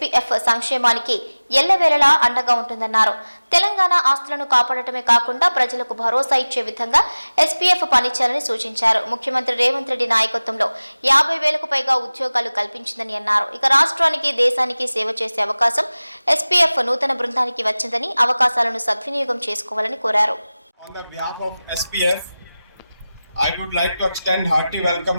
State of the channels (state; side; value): inverted; both; correlation -0.98